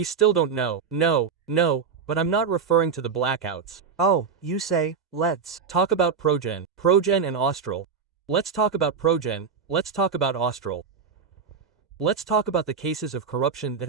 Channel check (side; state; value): left; quieter; 6.0 dB